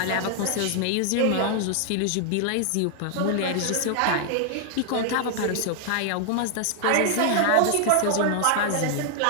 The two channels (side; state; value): both; different; correlation 0.00